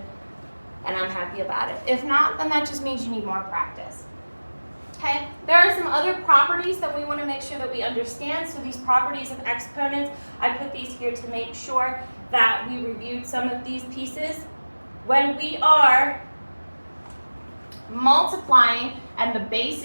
and I'm happy about it. If not, then that just means you need more practice. Okay, there are some other properties that we want to make sure that we understand. So these properties of exponents, I put these here to make sure that we reviewed some of these pieces. When we are multiplying and the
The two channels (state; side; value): inverted; both; correlation -1.00